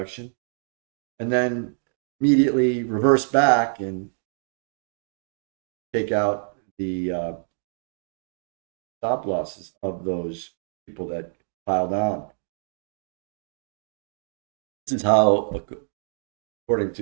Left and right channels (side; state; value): left; silent; 61 dB below the other